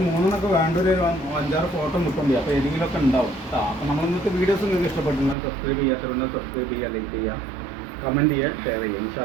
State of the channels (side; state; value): left; drops out; at 5.4 s